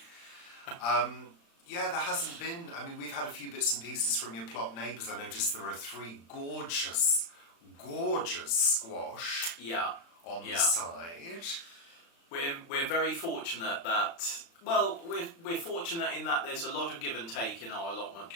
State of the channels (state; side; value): late; right; 35 ms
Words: There hasn't been... I mean, we've had a few bits and pieces from your plot neighbours. I noticed there are 3 gorgeous squash on the side. We're very fortunate that... Well, we're fortunate in that there's a lot of give and take in our allotment